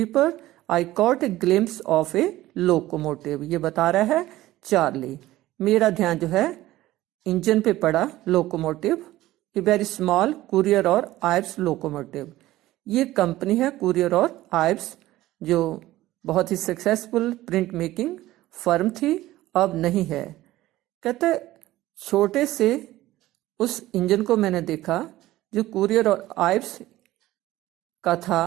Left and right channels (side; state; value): left; quieter; 16.1 dB